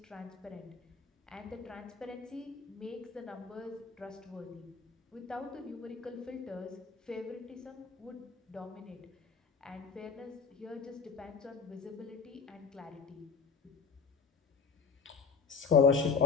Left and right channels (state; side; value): quieter; right; 5.4 dB